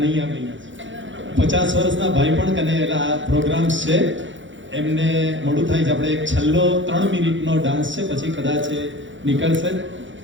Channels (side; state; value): left; late; 0.55 ms